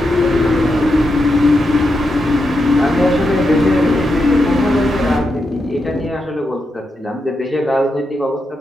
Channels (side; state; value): both; normal; correlation 0.85